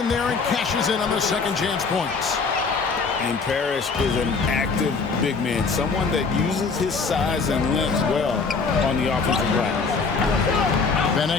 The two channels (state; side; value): quieter; right; 4.7 dB